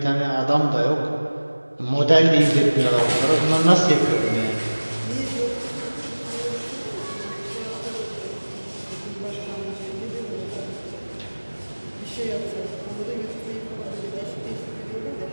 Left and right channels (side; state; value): both; inverted; correlation -1.00